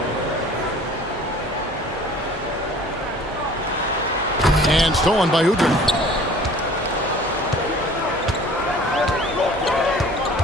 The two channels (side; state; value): both; normal; correlation 0.48